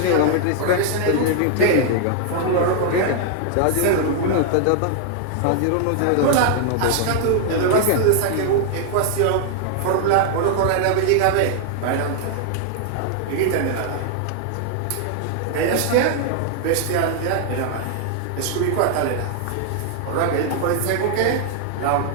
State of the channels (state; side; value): different; both; correlation 0.00